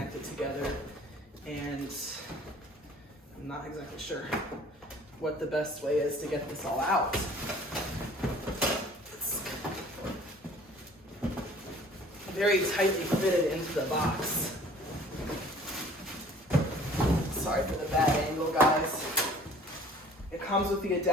together. And I'm not exactly sure what the best way is to get this all out. It's very tightly fitted into the box. Sorry for the bad angle, guys. It comes with the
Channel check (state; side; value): normal; both; correlation 0.51